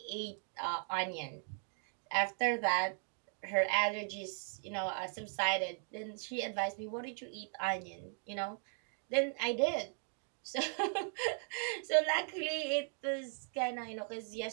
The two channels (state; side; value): silent; left; 52 dB below the other